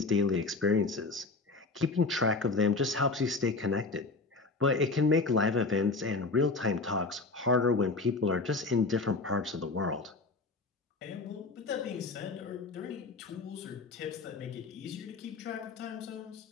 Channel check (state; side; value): quieter; right; 3.7 dB